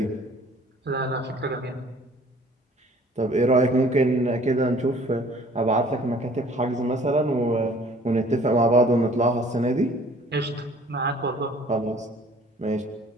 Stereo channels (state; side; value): normal; both; correlation 0.53